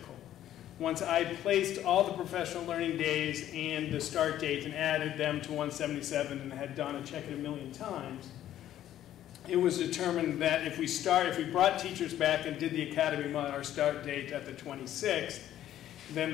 Once I placed all the professional learning days and the start date and added them to 177 and had Donna check it a million times, it was determined that if we brought teachers back and did the academy our start date at the 26th, then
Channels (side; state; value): right; quieter; 12.1 dB